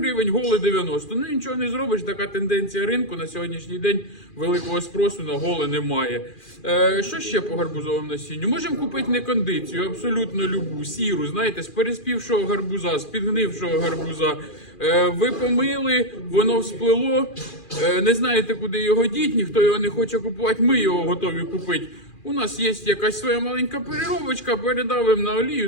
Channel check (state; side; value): late; right; 2.4 ms